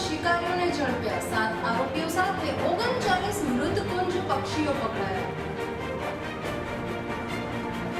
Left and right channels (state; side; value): identical; both; correlation 1.00